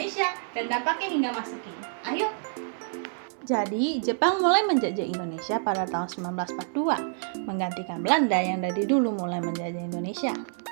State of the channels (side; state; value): left; silent; digital silence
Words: dan dampaknya hingga masa kini. Ayo. Jadi, Jepang mulai menjajah Indonesia pada tahun 1942, menggantikan Belanda yang dari dulu mulai menjajah Indonesia.